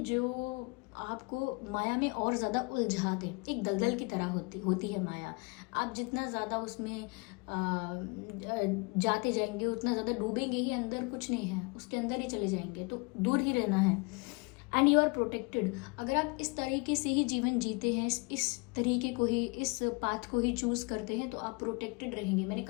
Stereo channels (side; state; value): right; quieter; 30.3 dB